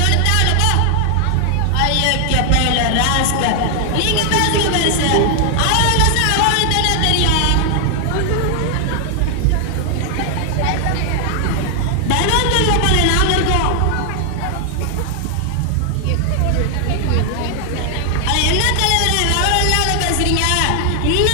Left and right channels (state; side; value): different; both; correlation 0.00